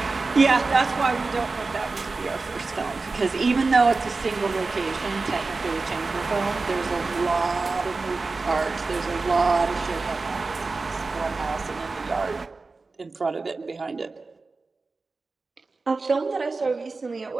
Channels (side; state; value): left; quieter; 3.9 dB